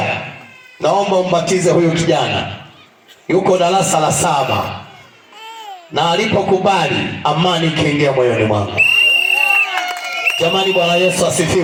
naomba umbatize huyu kijana, yuko darasa la 7. Na alipokubali, amani ikaingia moyoni mwangu. Jamani, Bwana Yesu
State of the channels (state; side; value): identical; both; correlation 1.00